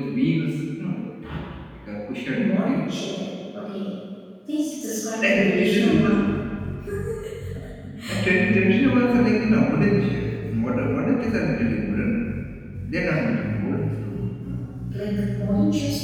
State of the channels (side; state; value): both; identical; correlation 1.00